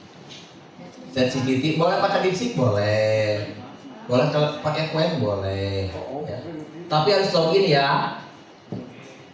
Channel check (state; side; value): identical; both; correlation 1.00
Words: ChatGPT boleh pakai DeepSeek boleh, boleh kalau pakai Qwen boleh, ya. Tapi harus login ya.